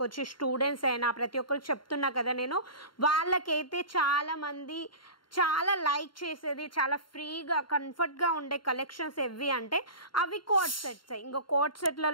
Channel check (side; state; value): right; late; 0.72 ms